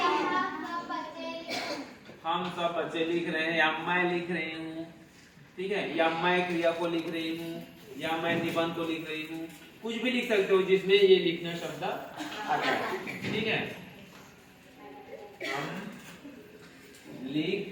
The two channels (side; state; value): both; identical; correlation 1.00